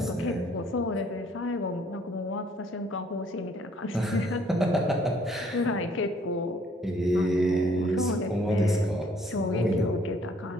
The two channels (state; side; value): normal; both; correlation 0.62